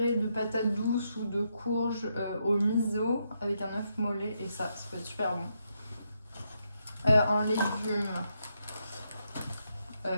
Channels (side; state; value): both; inverted; correlation -0.80